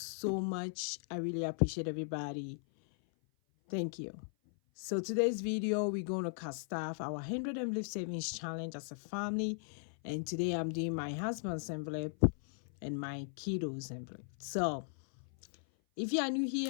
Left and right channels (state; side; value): silent; right; 53 dB below the other